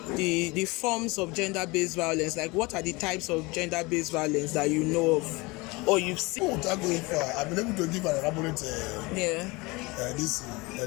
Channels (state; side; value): quieter; right; 24.5 dB